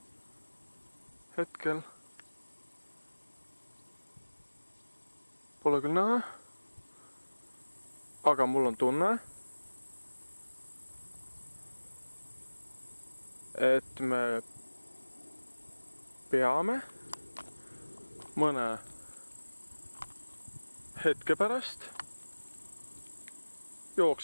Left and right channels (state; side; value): inverted; both; correlation -1.00